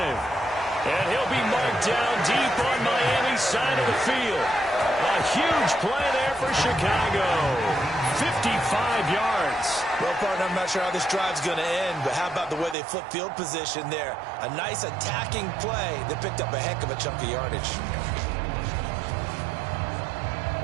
And he'll be marked down deep on Miami's side of the field. A huge play there for Chicago. 55 yards. Well, partner, I'm not sure how this drive's going to end, but how about the way they flip field position there? A nice attacking play that picked up a heck of a chunk of yardage.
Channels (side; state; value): left; drops out; at 12.8 s